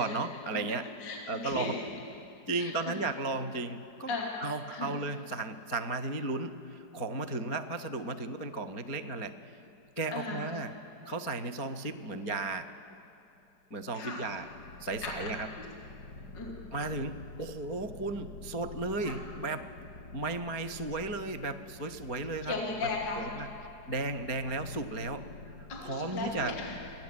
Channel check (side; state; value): right; late; 4.9 ms